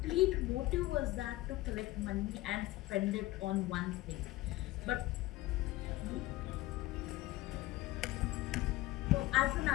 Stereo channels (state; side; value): quieter; right; 17.7 dB